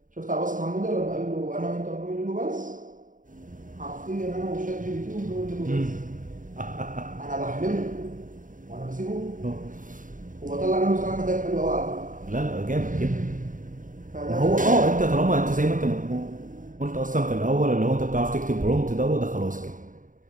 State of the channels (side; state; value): left; late; 0.38 ms